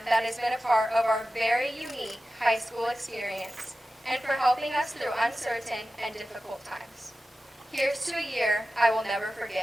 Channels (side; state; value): both; normal; correlation 0.94